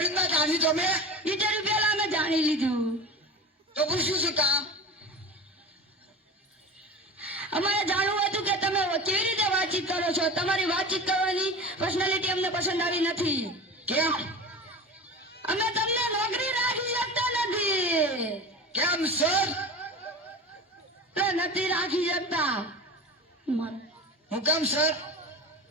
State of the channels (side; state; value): both; normal; correlation 0.32